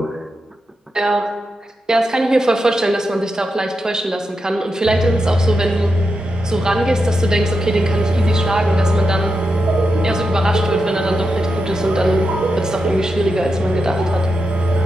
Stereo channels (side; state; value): both; normal; correlation 0.87